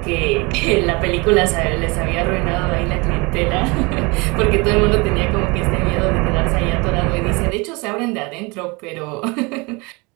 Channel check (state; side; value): quieter; left; 27.0 dB